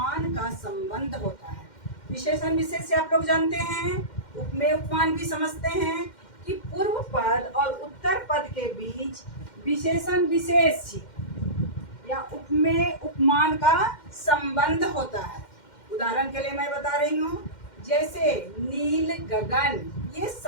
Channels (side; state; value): right; late; 2.1 ms